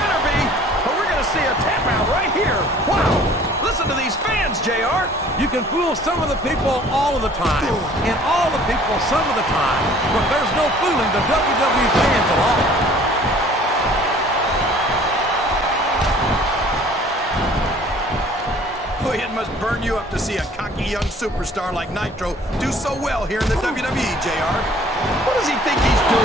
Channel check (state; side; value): normal; both; correlation 0.52